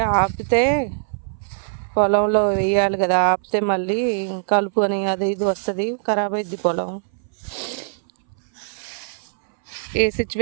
ఆపితే పొలంలో వేయాలి కదా, ఆపితే మళ్ళీ కలుపు అని అది ఇది వస్తుంది, ఖరాబ్ అయింది పొలం. ఏ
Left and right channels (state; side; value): silent; left; 62 dB below the other